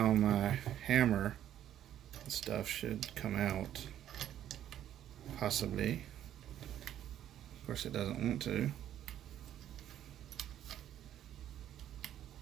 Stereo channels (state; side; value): quieter; left; 11.2 dB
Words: my hammer and stuff should come out, possibly. Of course it doesn't want to.